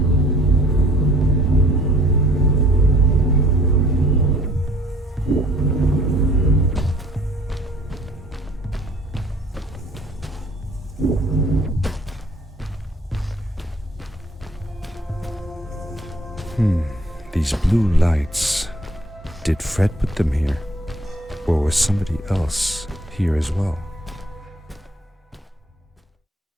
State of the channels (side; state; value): both; normal; correlation 0.57